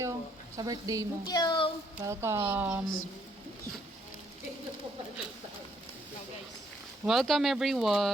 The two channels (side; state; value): both; normal; correlation 0.70